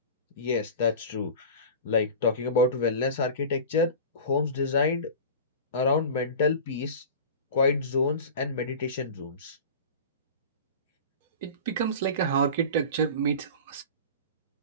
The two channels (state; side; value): inverted; both; correlation -0.34